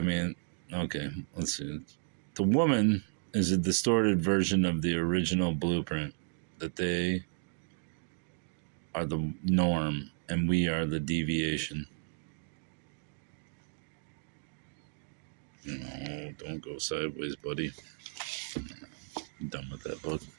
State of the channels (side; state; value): left; silent; 55 dB below the other